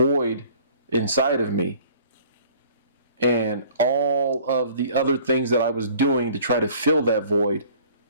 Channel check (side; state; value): both; inverted; correlation -0.52